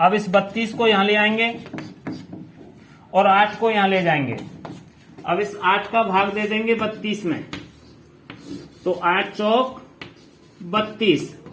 इस 32 को यहां ले आएंगे और 8 को यहां ले जाएंगे। अब इस 8 का भाग दे देंगे 32 में, तो 8 चौक 32,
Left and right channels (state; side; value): identical; both; correlation 1.00